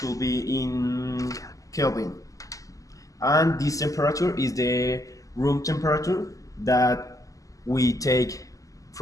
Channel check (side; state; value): right; late; 0.16 ms